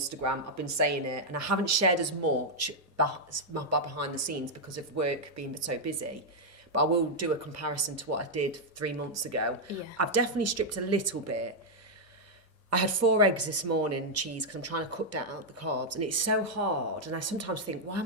I've been saying it, and I haven't shared as much behind the scenes because of work being so busy. But I will do a comparison to what I did 3 months ago. Yeah. I've definitely stripped a little bit. I had 4 eggs this morning and cheese because I'm trying to cut down the carbs, and it's so hard. And I sometimes think, why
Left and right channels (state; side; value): normal; both; correlation -0.02